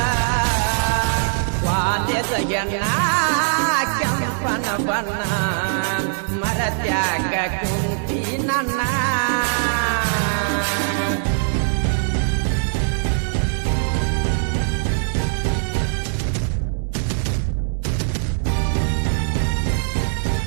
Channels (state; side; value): silent; left; 65 dB below the other